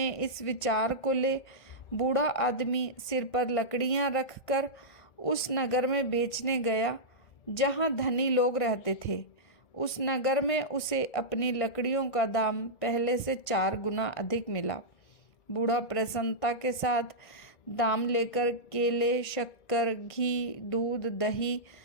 इस विचार को ले बूढ़ा आदमी सिर पर लकड़ियाँ रखकर उस नगर में बेचने गया जहाँ धनी लोग रहते थे। उस नगर में उसे अपनी लकड़ियों का दाम पहले से 4 गुना अधिक मिला। बूढ़ा प्रसन्नता के साथ दाम लेकर केले, शक्कर, घी, दूध, दही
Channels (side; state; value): right; late; 1.5 ms